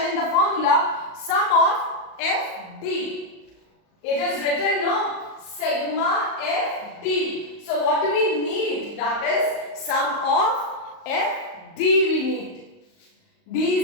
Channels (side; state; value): right; late; 38 ms